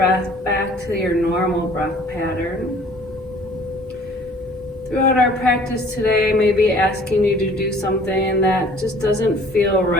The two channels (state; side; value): normal; both; correlation 0.52